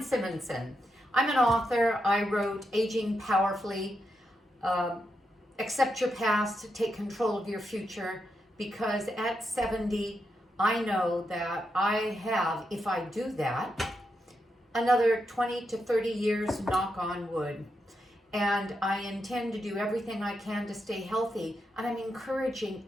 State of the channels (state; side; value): normal; both; correlation 0.84